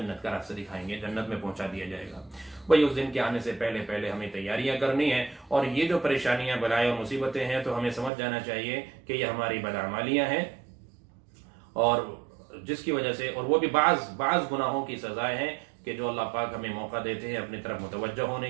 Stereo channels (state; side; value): drops out; left; at 8.1 s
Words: کا راستہ دکھائیں گے، جنت میں پہنچا دیا جائے گا. بھائی اس دن کے آنے سے پہلے ہمیں تیاریاں کرنی ہیں. اور یہ جو پریشانیاں، بلائیں اور مصیبتیں ہیں، تو ہمیں سمجھ جانا چاہیے کہ یہ ہماری بدعمالیاں ہیں، اور جس کی وجہ سے، اور وہ بھی بعض گناہوں کی سزائیں ہیں کہ جو اللہ پاک ہمیں موقع دیتے ہیں اپنی طرف متوجہ ہونے